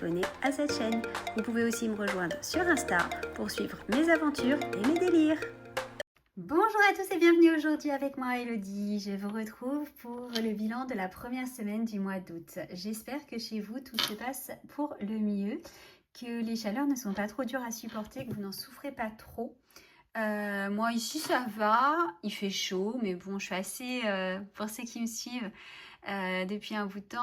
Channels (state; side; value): identical; both; correlation 1.00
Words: à cette chaîne. Vous pouvez aussi me rejoindre sur Insta pour suivre mes aventures et mes délires. Bonjour à tous et bienvenue aujourd'hui avec moi Elodie. Je vous retrouve pour le bilan de la première semaine du mois d'août. J'espère que chez vous tout se passe pour le mieux, que les chaleurs ne sont pas trop dures à supporter, que vous n'en souffrez pas trop. Moi ici ça va, il fait chaud, mais bon je suis assez, pour ceux qui me suivent depuis un bout de